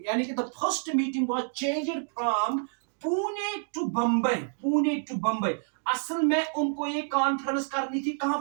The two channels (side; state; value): left; silent; 59 dB below the other